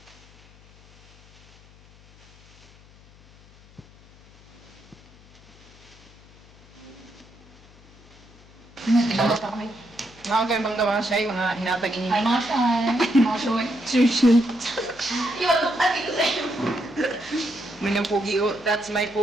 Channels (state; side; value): noise; left; hum, 25 dB below the sound